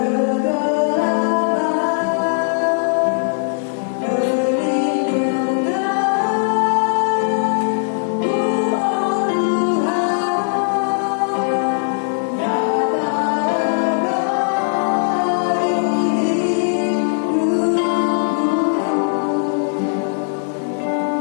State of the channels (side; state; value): right; silent; digital silence